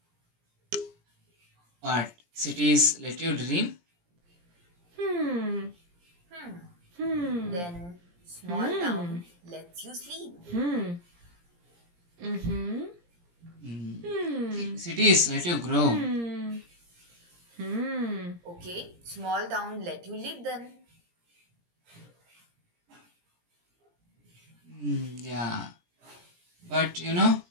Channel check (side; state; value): left; late; 17 ms